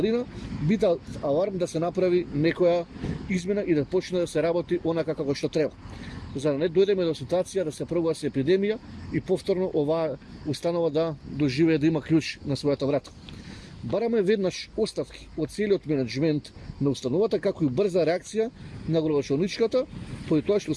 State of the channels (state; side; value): identical; both; correlation 1.00